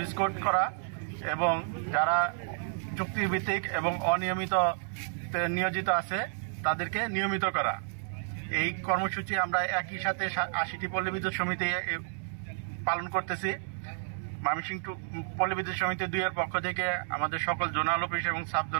কোড করা এবং যারা চুক্তিভিত্তিক এবং অনিয়মিত নিয়োজিত আছে তাদেরকে নিয়মিত করা। এই কর্মসূচি আমরা একই সাথে ৮০টি পল্লী বিদ্যুৎ সমিতি পালন করতেছি। ময়মনসিংহ পল্লী বিদ্যুৎ সমিতি ২ এর পক্ষ থেকে আমাদের সকল জোনাল অফিস এবং সাব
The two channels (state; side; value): silent; left; digital silence